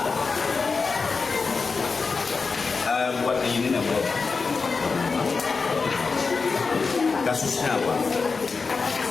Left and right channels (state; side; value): quieter; right; 4.6 dB